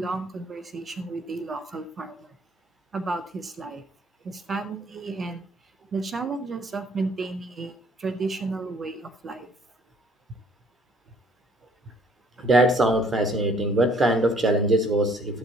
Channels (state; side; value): normal; both; correlation 0.60